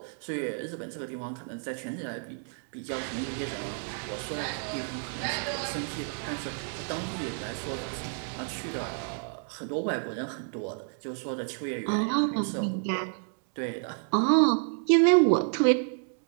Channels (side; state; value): left; silent; 58 dB below the other